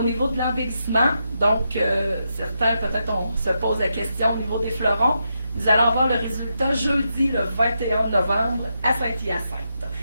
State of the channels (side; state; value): both; inverted; correlation -0.84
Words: niveau de l'embellissement, donc certains peut-être on se pose la question au niveau des fleurons. Nous allons avoir le résultat jeudi le 21 novembre à Saint-Hyacinthe.